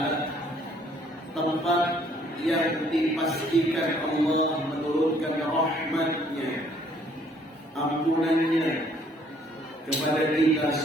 tempat yang dipastikan Allah menurunkan rahmatnya, ampunannya kepada kita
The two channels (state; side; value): normal; both; correlation 0.62